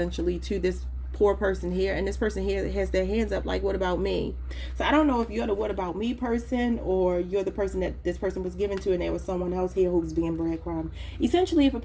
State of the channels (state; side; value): identical; both; correlation 1.00